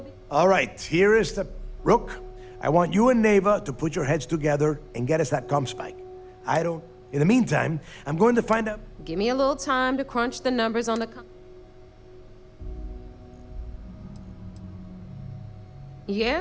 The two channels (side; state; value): both; identical; correlation 1.00